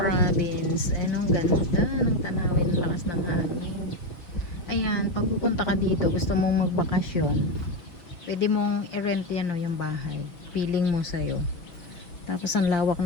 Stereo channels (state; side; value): late; right; 6.0 ms